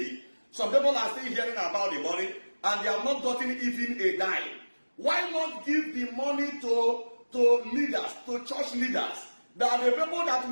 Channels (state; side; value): inverted; both; correlation -1.00